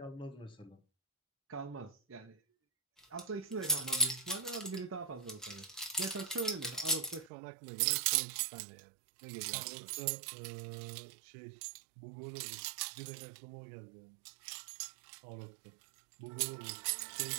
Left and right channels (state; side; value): drops out; left; at 7.3 s